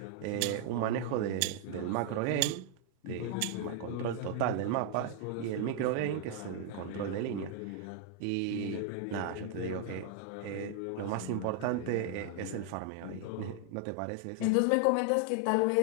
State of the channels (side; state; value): both; different; correlation 0.00